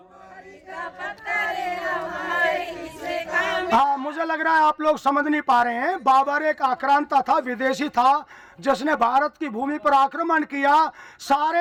का पत्थर हमारे किसे मुझे लग रहा है आप लोग समझ नहीं पा रहे हैं। बाबर एक आक्रांता था, विदेशी था, जिसने भारत की भूमि पर आक्रमण किया,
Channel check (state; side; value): identical; both; correlation 1.00